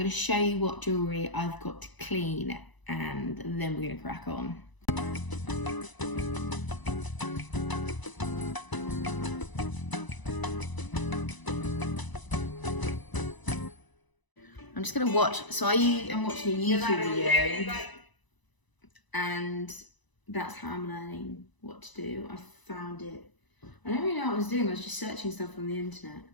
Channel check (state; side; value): late; right; 1.0 ms